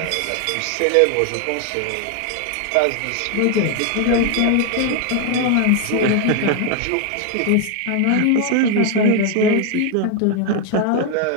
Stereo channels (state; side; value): different; both; correlation 0.01